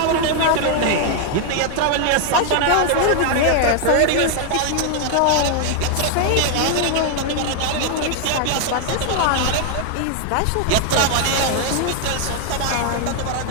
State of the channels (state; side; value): different; both; correlation 0.00